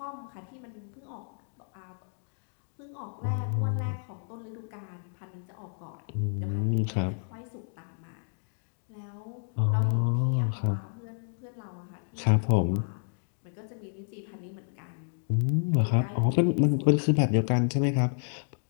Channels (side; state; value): right; silent; digital silence